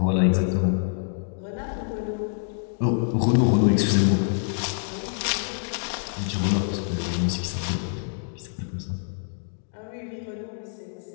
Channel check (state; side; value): silent; right; digital silence